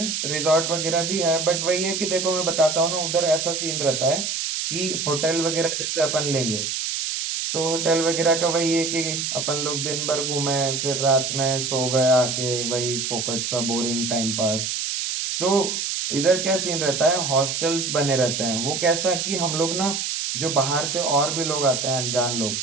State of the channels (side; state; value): right; noise; hiss, 2 dB below the sound